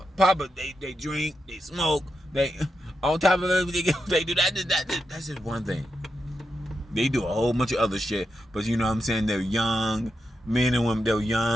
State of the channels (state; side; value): normal; both; correlation 0.86